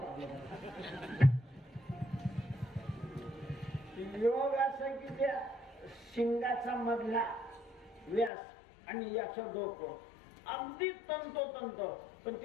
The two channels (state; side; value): drops out; right; at 8.3 s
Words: टाकलं. योग असं की त्या शिंगाचा मधला व्यास आणि याचं डोकं अगदी तंतोतंत, पण